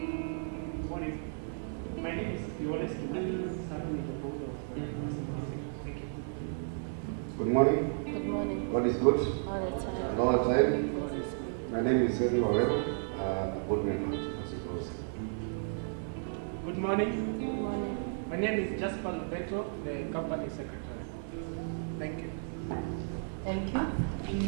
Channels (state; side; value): silent; left; digital silence